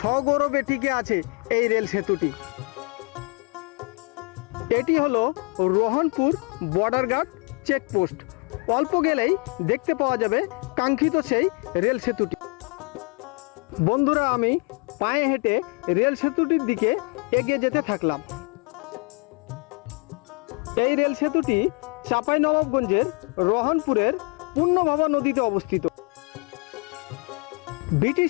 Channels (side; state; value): right; quieter; 33.7 dB